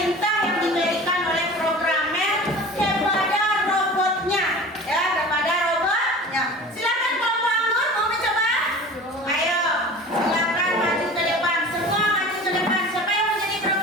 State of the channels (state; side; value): normal; both; correlation 0.39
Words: yang diberikan oleh programmer kepada robotnya ya, kepada robotnya. Silakan kelompok anggur mau mencoba? Ayo, silakan maju ke depan. Semua maju ke depan. Siapa yang menjadi